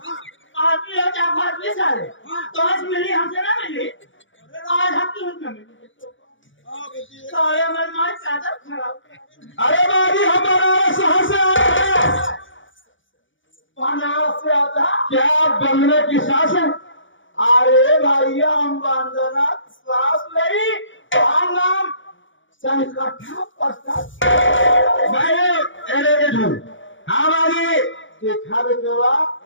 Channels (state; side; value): late; right; 0.56 ms